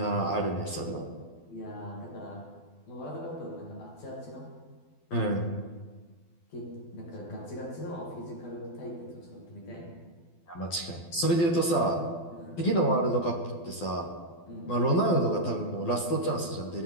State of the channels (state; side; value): late; right; 12 ms